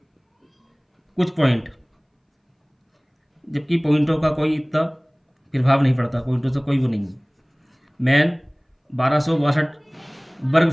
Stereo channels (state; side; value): identical; both; correlation 1.00